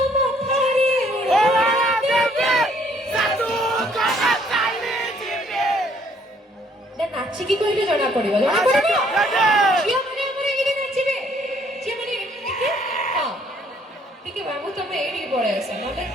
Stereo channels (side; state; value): both; normal; correlation 0.64